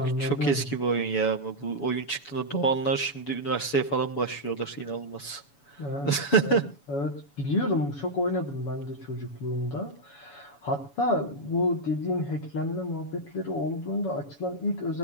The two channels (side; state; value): right; late; 7.1 ms